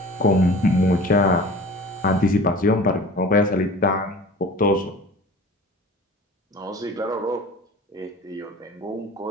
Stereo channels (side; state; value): both; normal; correlation 0.41